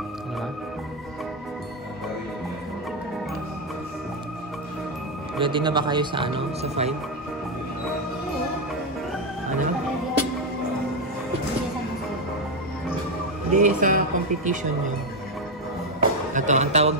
Diba? Ready na ba kayo sa ano? Sa 5? Ano? Hindi, sa competition nyo. Ito, ang tawag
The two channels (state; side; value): normal; both; correlation 0.07